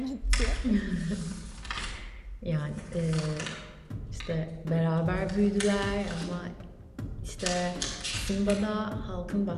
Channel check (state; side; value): identical; both; correlation 1.00